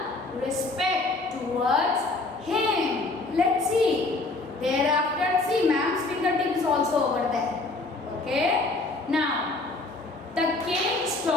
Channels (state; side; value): quieter; right; 3.2 dB